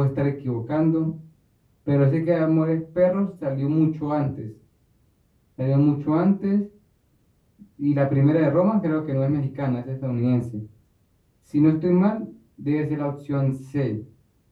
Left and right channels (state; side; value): identical; both; correlation 1.00